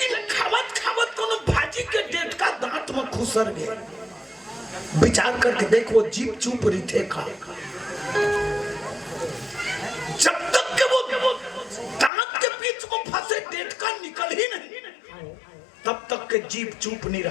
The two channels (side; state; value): right; drops out; at 12.1 s